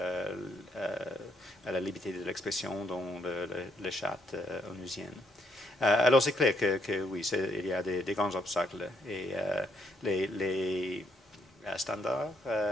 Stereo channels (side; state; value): both; normal; correlation 0.73